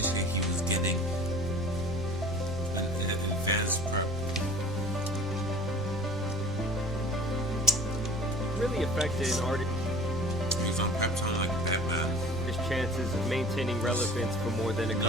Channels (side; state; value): both; normal; correlation 0.44